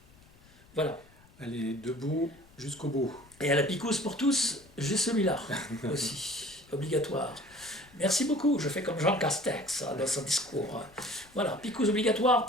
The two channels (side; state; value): left; noise; rumble, 27 dB below the sound